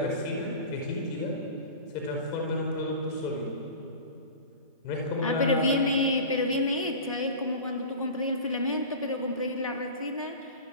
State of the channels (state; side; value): inverted; both; correlation -0.35